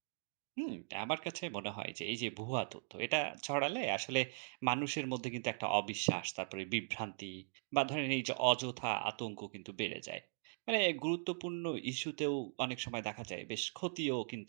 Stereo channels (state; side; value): silent; left; digital silence